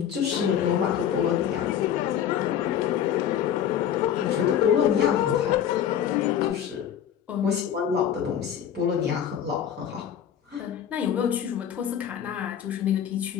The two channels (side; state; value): right; quieter; 9.4 dB